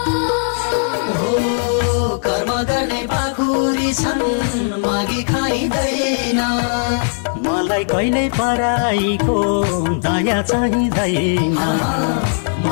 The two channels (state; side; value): silent; right; digital silence